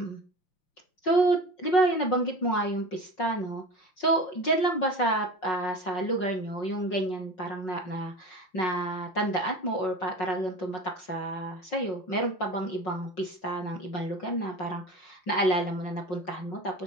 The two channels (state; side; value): late; right; 5.4 ms